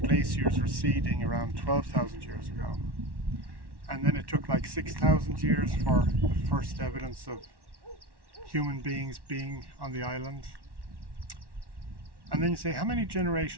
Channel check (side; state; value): left; late; 1.1 ms